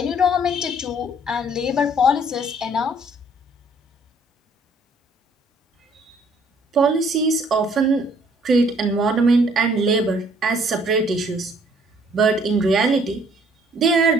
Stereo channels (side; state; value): both; normal; correlation 0.61